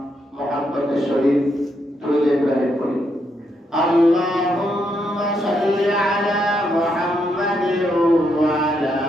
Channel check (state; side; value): normal; both; correlation 0.78